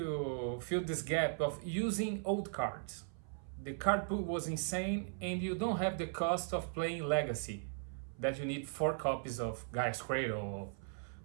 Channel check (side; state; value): left; silent; 52 dB below the other